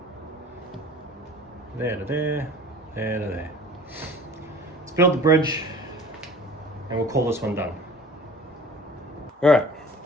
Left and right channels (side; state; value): both; normal; correlation 0.44